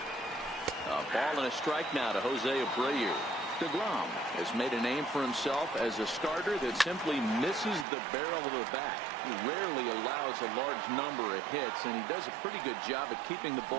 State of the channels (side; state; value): left; drops out; at 7.9 s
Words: A ball and a strike now to Jose Abreu. DeGrom has made a name for himself as a starter that simply misses the barrel of the bat. He rarely allows a large number of hits, and he does a pretty good job at keeping the